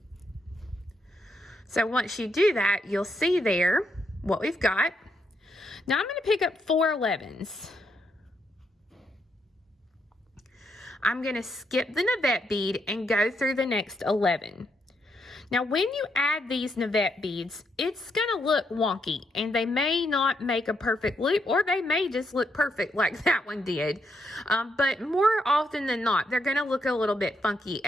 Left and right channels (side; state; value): both; normal; correlation 0.78